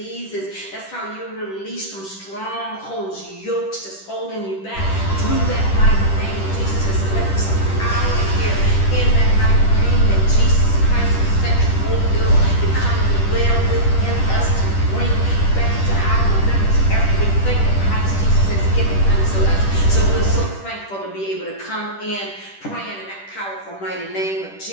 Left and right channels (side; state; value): right; late; 10 ms